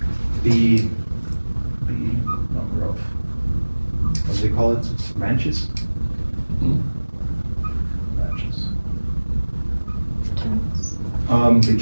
the number of, what do they call it, branches? They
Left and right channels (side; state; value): both; inverted; correlation -1.00